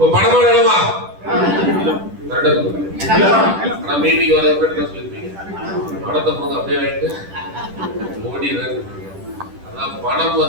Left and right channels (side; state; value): left; late; 10 ms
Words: பணமா வேணுமா? ஆனா மீட்டிங் வரதுக்கு என்ன சொல்லிருப்பீங்க? பணத்தை போது அப்படியே வாங்கிட்டு ஓடிடுறேன். அதான் பணம்